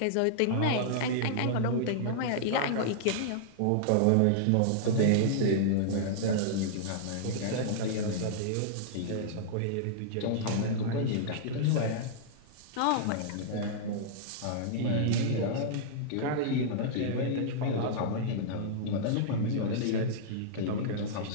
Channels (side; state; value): both; different; correlation -0.02